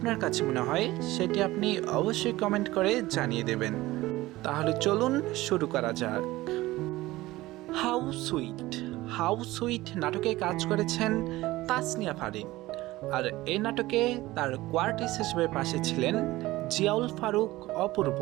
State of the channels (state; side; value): quieter; left; 18.2 dB